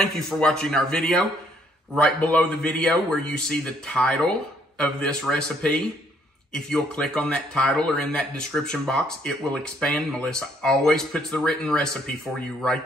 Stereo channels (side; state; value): both; normal; correlation 0.67